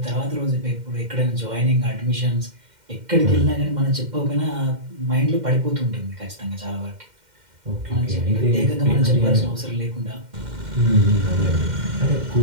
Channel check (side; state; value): left; late; 2.1 ms